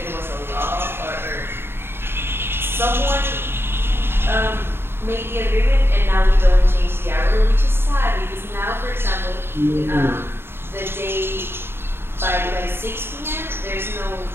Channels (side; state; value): left; late; 0.11 ms